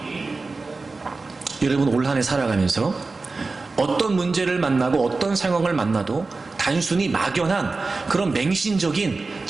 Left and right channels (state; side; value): quieter; left; 3.8 dB